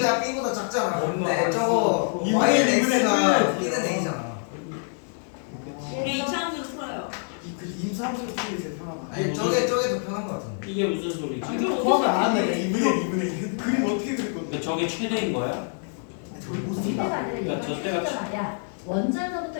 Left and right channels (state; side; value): silent; right; 57 dB below the other